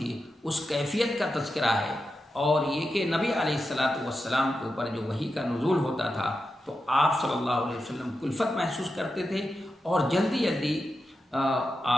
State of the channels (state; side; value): normal; both; correlation 0.89